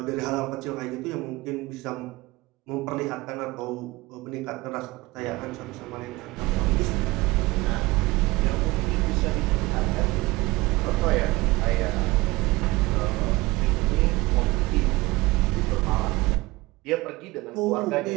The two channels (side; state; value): left; quieter; 21.0 dB